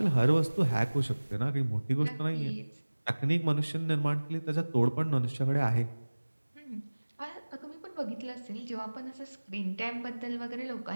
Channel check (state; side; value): inverted; both; correlation -1.00